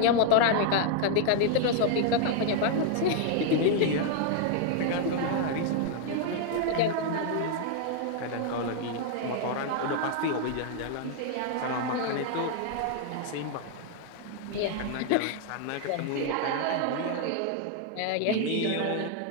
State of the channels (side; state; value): both; different; correlation 0.00